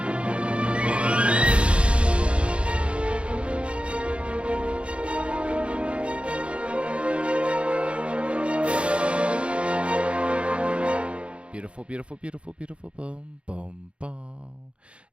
Beautiful, beautiful, beautiful, beautiful, boom, boom, boom.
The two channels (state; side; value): late; left; 0.059 ms